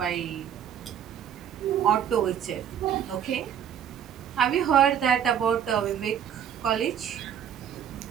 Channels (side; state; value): left; quieter; 9.2 dB